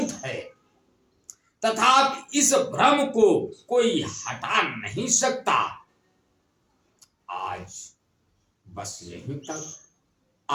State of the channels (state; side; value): identical; both; correlation 1.00